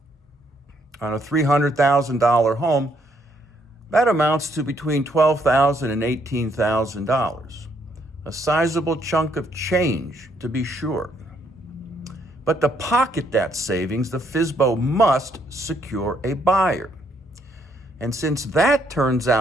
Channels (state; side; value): normal; both; correlation 0.71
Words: On a $300,000 home, that amounts to between $12,000 and $18,000. A sizable chunk of change, to be sure. But to pocket that savings, the FSBO must secure a buyer. And since that turns